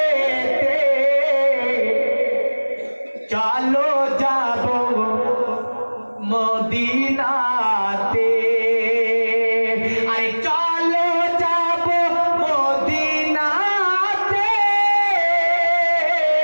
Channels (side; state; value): both; inverted; correlation -1.00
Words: চলো যাবো মদিনাতে। আরে চলো যাবো মদিনাতে,